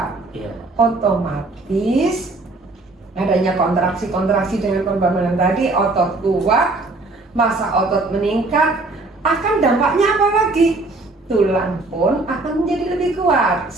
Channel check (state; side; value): quieter; left; 3.2 dB